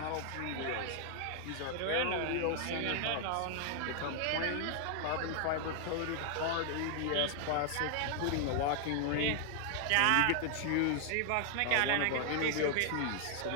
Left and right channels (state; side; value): different; both; correlation 0.00